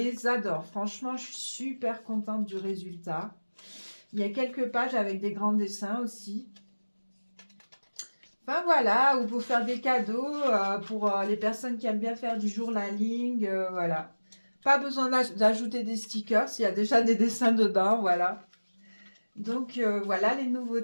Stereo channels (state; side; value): inverted; both; correlation -1.00